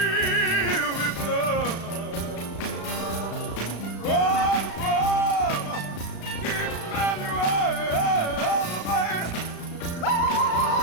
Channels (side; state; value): right; late; 35 ms